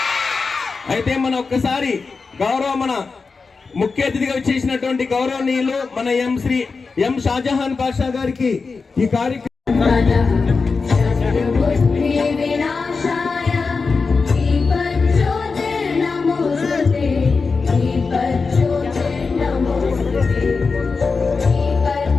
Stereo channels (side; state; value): right; quieter; 4.5 dB